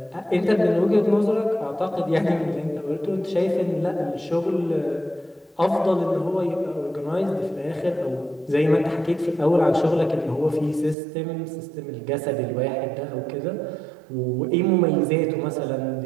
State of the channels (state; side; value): drops out; left; at 11.0 s